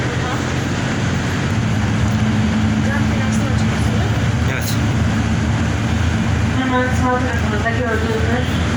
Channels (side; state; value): both; identical; correlation 1.00